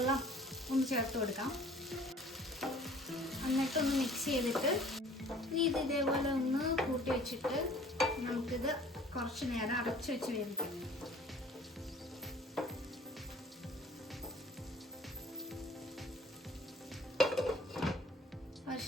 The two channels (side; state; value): both; normal; correlation 0.51